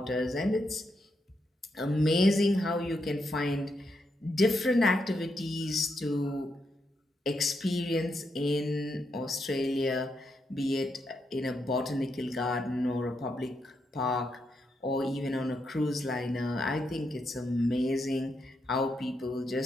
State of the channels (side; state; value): both; normal; correlation 0.81